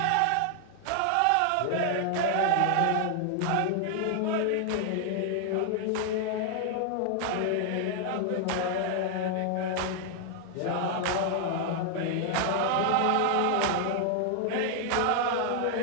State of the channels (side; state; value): both; different; correlation 0.00